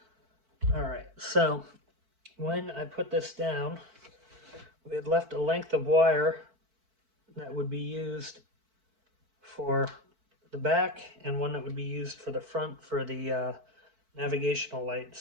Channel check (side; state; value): left; late; 4.5 ms